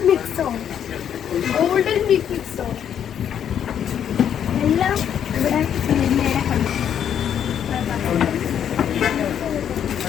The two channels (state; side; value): quieter; right; 9.1 dB